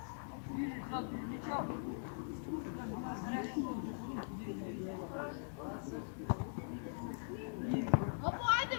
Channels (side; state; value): right; silent; digital silence